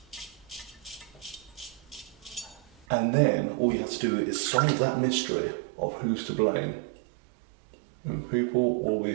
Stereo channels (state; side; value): drops out; left; at 2.9 s